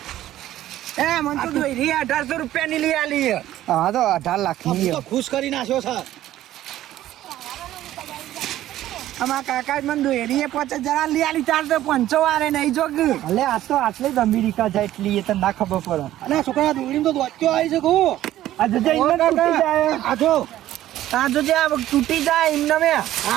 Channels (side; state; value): left; quieter; 13.6 dB